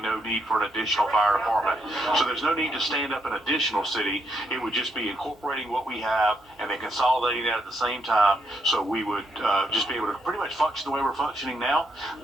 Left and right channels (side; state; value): both; normal; correlation 0.77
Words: no need for an additional fire department. So there's no need to stand up an additional city. It would just be incorporating what we have and then consolidating that at the same time. So we would just be able to pretty much function the way we're functioning now,